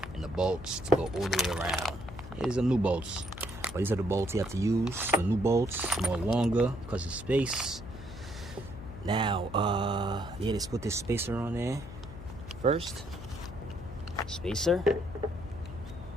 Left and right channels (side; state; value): left; noise; hum, 13 dB below the sound